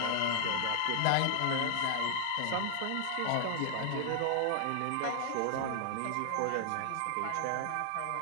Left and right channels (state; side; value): different; both; correlation 0.00